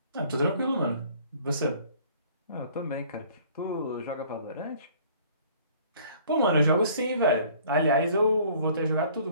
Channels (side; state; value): both; inverted; correlation -0.54